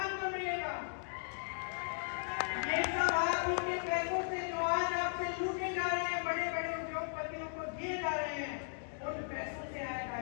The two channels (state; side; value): silent; right; digital silence